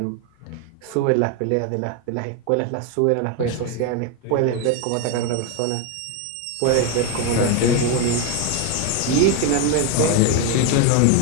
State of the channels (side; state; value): both; different; correlation 0.02